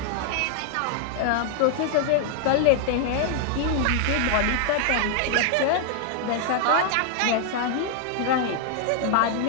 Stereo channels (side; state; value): both; different; correlation 0.00